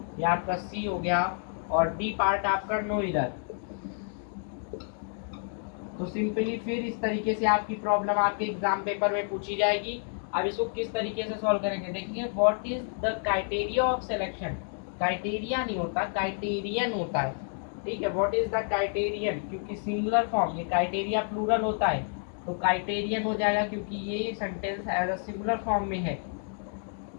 ये आपका सी हो गया और डी पार्ट आपका नो एरर। तो सिंपली फिर इस तरीके से आपकी प्रॉब्लम आपके एग्जाम पेपर में पूछी जाएगी। अब इसको किस तरीके से सॉल्व करेंगे देखिए। What is the criteria of selection, criteria नहीं होता, क्राइटेरियन होता है, ठीक है। व्हाट इज द क्राइटेरियन, क्योंकि सिंगुलर फॉर्म, ये क्राइटेरिया प्लूरल होता है तो क्राइटेरियन हो जाएगा क्योंकि ये sentence as a singular form में है।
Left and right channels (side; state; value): right; silent; 58 dB below the other